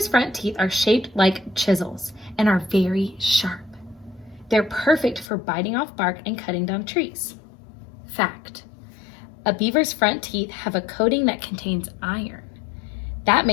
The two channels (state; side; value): drops out; right; at 5.2 s